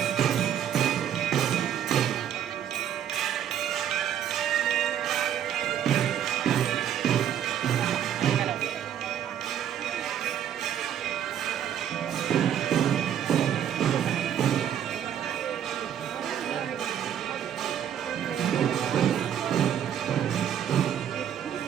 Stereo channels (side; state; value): left; quieter; 9.7 dB